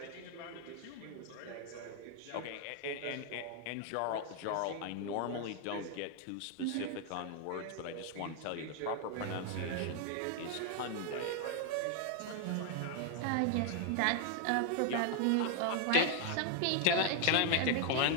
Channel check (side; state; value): both; different; correlation 0.00